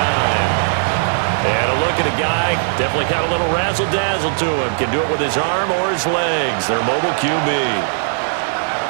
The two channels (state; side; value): silent; left; digital silence